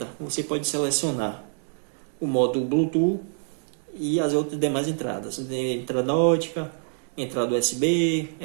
você pode selecionar o modo Bluetooth e as outras demais entradas. Entrada ótica, entrada USB,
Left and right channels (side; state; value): left; silent; digital silence